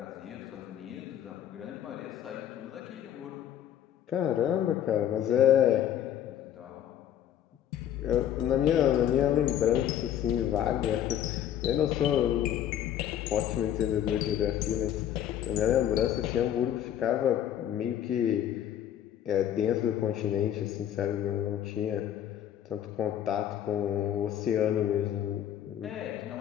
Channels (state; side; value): quieter; right; 10.6 dB